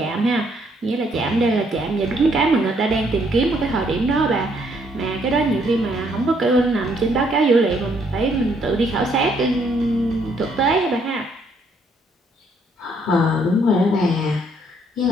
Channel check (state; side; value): normal; both; correlation 0.69